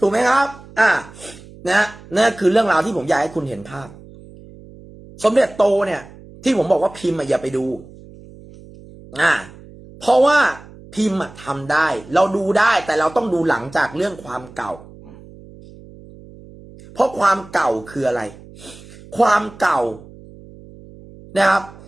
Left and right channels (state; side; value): noise; right; hum, 20 dB below the sound